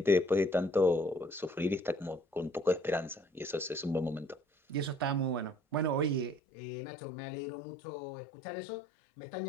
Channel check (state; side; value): drops out; right; at 6.4 s